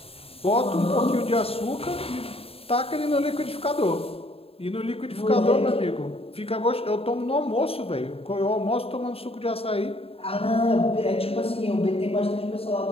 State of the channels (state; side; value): late; right; 0.28 ms